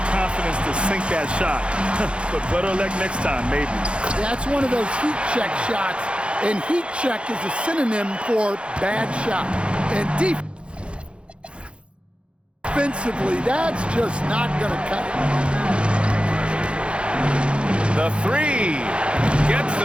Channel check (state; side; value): late; left; 0.058 ms